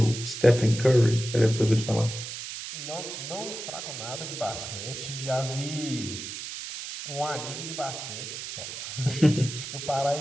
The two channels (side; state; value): right; noise; hiss, 8 dB below the sound